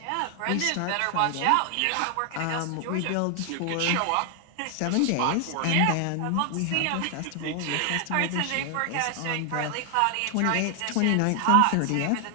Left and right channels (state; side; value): different; both; correlation 0.00